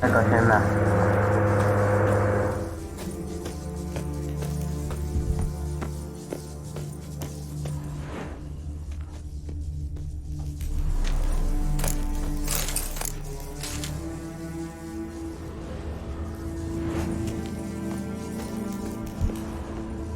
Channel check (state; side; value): identical; both; correlation 1.00